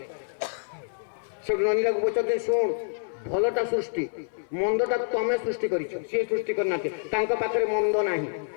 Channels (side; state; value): right; silent; 60 dB below the other